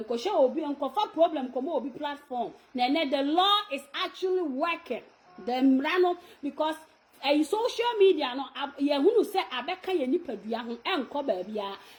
Kosha will be on cofa problem, come will be platform. Then the law is actually working. The rano because a social media no who say abeka ye nipadua ho enko ba bia.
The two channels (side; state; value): both; identical; correlation 1.00